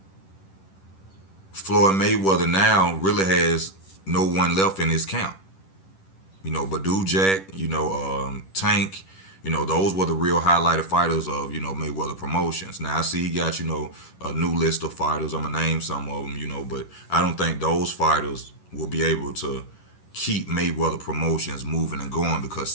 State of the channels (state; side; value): late; right; 10 ms